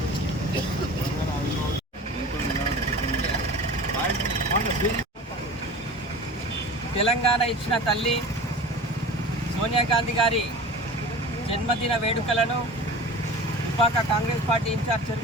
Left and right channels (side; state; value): both; normal; correlation 0.37